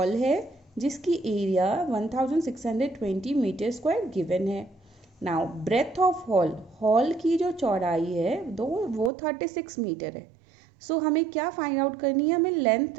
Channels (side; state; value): left; drops out; at 9.1 s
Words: है जिसकी area 1620 metre square given है. नाउ ब्रेथ ऑफ हॉल की जो चौड़ाई है वो 36 मीटर है. सो हमें क्या फाइंड आउट करनी है? हमें